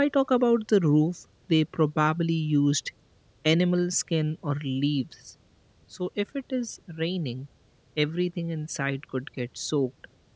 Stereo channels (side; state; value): both; identical; correlation 1.00